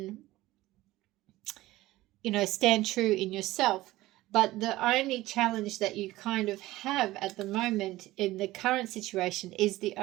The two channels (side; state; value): left; quieter; 17.3 dB